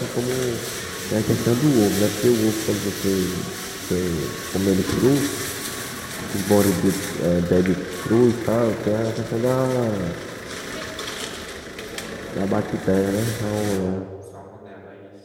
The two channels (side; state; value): both; identical; correlation 1.00